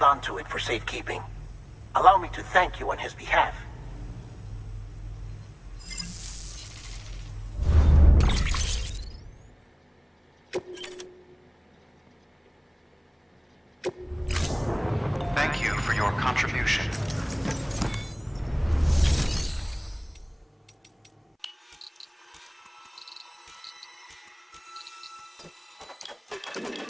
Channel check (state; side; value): identical; both; correlation 1.00